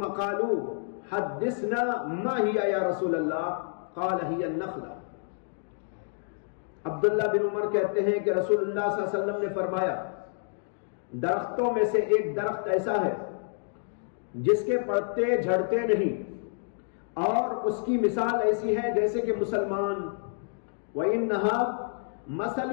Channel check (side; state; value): right; silent; digital silence